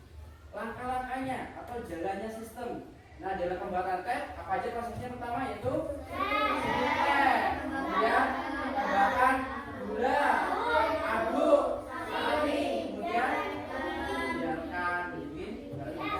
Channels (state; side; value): identical; both; correlation 1.00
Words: langkah-langkahnya atau jalannya sistem. Nah, dalam pembuatan teh apa aja prosesnya? Pertama yaitu teh, kemudian tambahkan gula, aduk, saring, kemudian biarkan dingin baru